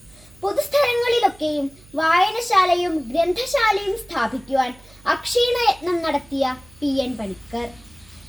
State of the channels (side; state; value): right; noise; hum, 26 dB below the sound